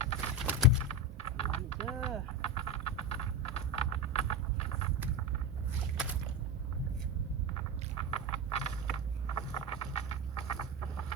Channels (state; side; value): normal; both; correlation 0.18